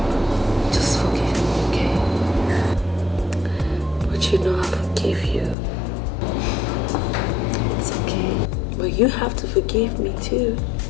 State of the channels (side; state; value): right; drops out; at 5.6 s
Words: Just forgive me, okay? But you know I forgive you. It's okay. But you have to forgive me too.